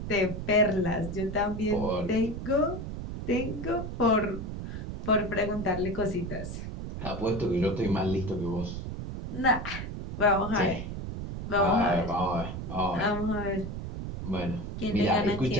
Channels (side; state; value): right; noise; rumble, 6 dB below the sound